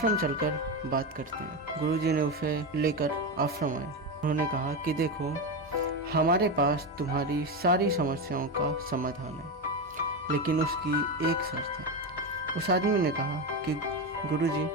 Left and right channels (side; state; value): both; normal; correlation 0.15